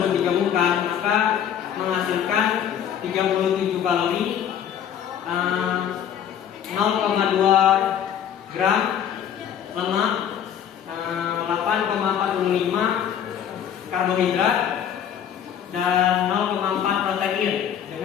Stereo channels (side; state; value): right; quieter; 9.2 dB